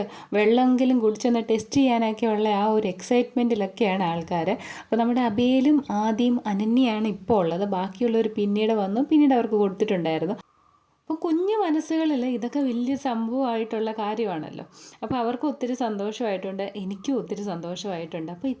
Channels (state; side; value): identical; both; correlation 1.00